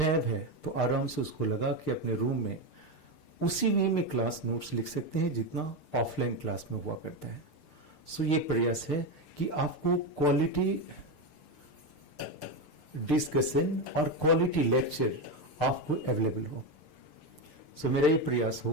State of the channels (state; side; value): late; right; 6.7 ms